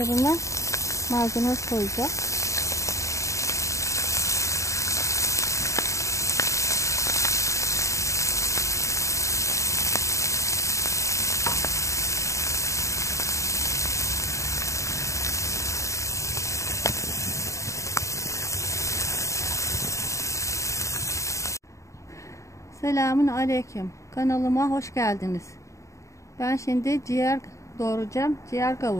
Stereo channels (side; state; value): right; late; 0.15 ms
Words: malzeme koyacağım. Selamun aleyküm. Kanalıma hoş geldiniz. Ben şimdi ciğer doğrayacağım. Ciğer